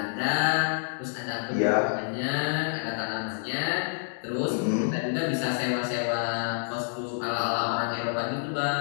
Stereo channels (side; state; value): right; silent; digital silence